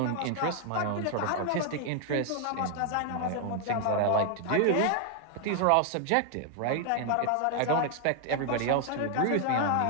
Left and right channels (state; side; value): different; both; correlation 0.00